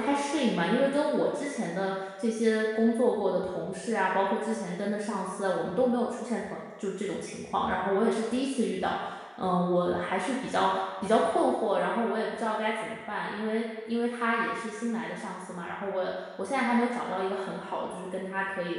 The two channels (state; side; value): identical; both; correlation 1.00